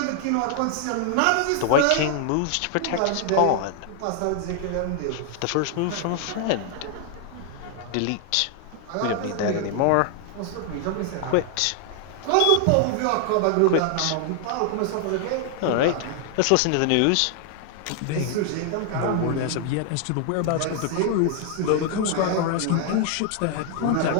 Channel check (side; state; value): both; different; correlation 0.00